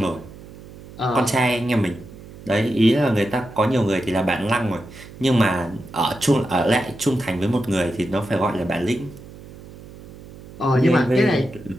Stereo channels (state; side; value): noise; right; hum, 18 dB below the sound